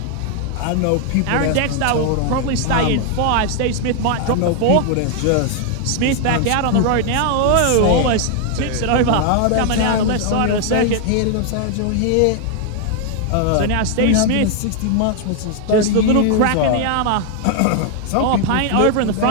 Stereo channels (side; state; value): both; different; correlation 0.00